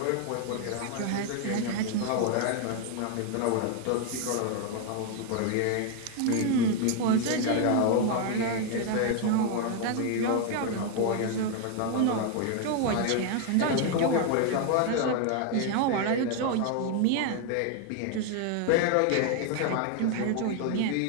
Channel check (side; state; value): both; different; correlation 0.01